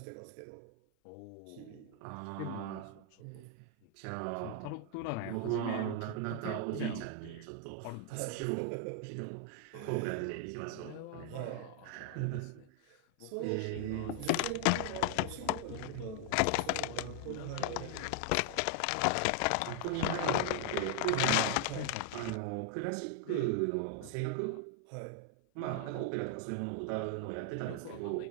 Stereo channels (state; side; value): different; both; correlation 0.00